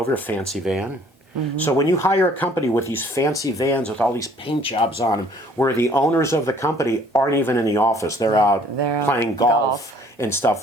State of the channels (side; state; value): both; normal; correlation 0.57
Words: a fancy van. So when you hire a company with these fancy vans with all these paint jobs on them, where the owners of the company aren't even in the office, they're out playing golf and